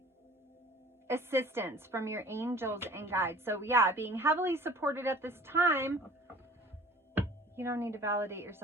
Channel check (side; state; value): both; normal; correlation 0.49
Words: assistance from your angels and guides. So yeah, being heavily supported at this time. You don't need to validate